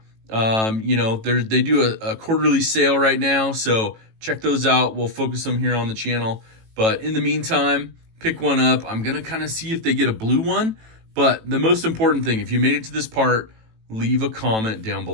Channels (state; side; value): late; left; 18 ms